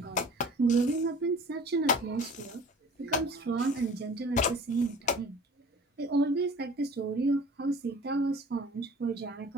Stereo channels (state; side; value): normal; both; correlation 0.45